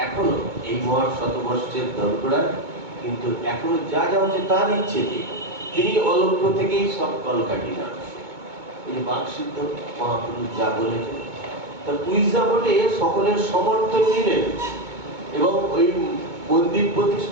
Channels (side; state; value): left; late; 2.2 ms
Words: এখনো এই মহান শতবর্ষের দরগড়ায় কিন্তু এখনো যা যা হচ্ছে তার ইচ্ছে। তিনি অলক্ষ্য থেকেই সব কলকাঠি নাড়ছে। এই বাকসিদ্ধ মহাপুরুষ যা বলেছেন তার উইজা বলে সকলের সমর্থন নিলেন এবং ওই মন্দির